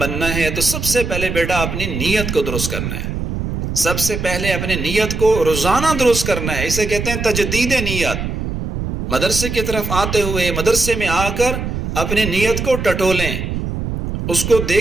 ہے تو سب سے پہلے بیٹا اپنی نیت کو درست کرنا ہے. سب سے پہلے اپنی نیت کو روزانہ درست کرنا ہے. اسے کہتے ہیں تجدید نیت. مدرسے کی طرف آتے ہوئے مدرسے میں آ کر اپنی نیت کو ٹٹولیں، اس کو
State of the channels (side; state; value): right; noise; rumble, 4 dB below the sound